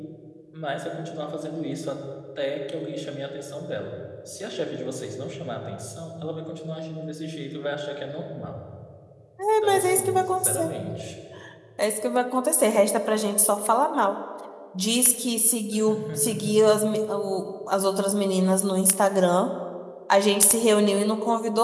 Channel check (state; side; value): identical; both; correlation 1.00